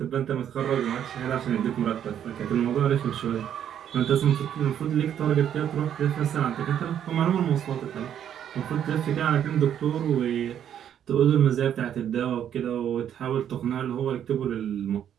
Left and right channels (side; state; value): left; quieter; 9.7 dB